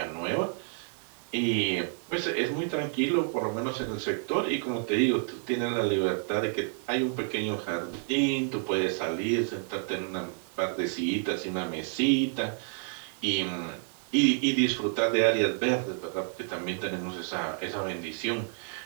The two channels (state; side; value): silent; left; 58 dB below the other